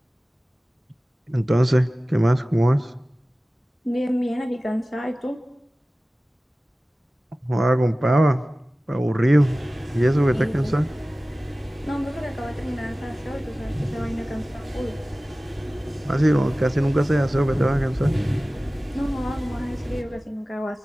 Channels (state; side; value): normal; both; correlation 0.97